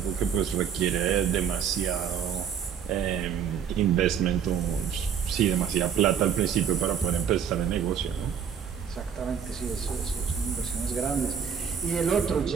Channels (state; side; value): quieter; left; 7.9 dB